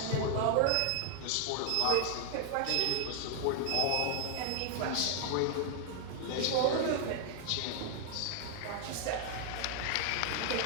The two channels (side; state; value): both; different; correlation 0.00